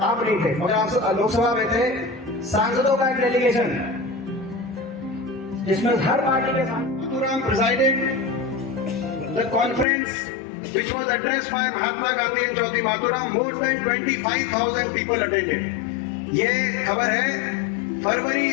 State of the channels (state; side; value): drops out; right; at 9.9 s